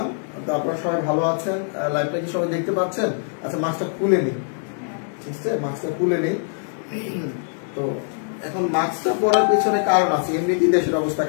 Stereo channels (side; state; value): right; silent; 64 dB below the other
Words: তো আপনারা সবাই ভালো আছেন? লাইভটা কি সবাই দেখতে পাচ্ছেন? আচ্ছা, মাস্কটা খুলে নিই। ঠিক আছে, মাস্কটা খুলে নিই। তো এখন মাস্কটা পরার পেছনে কারণ আছে, এমনিতেই দেশের অবস্থা